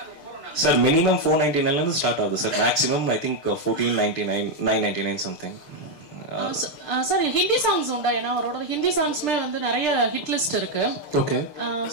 சார் மினிமம் 499 ஸ்டார்ட் ஆகுது sir. Maximum I think 1499 999 something. Sir Hindi songs உண்டா? ஏன்னா அவரோட ஹிந்தி சாங்ஸ்மே வந்து நிறைய ஹிட் லிஸ்ட் இருக்கு. ஓகே.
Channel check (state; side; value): late; right; 6.7 ms